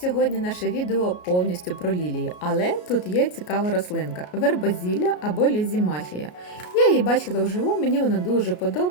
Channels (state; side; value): late; right; 33 ms